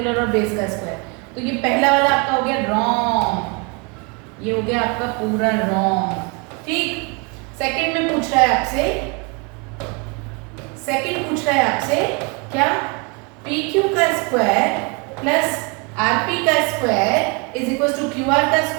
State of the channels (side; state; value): left; quieter; 30.6 dB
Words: और बेस का स्क्वायर, तो ये पहला वाला आपका हो गया रॉन्ग, ये हो गया आपका पूरा रॉन्ग। ठीक, सेकंड में पूछ रहा है आपसे, सेकंड पूछ रहा है आपसे क्या, PQ का स्क्वायर प्लस RP का square is equal to QR का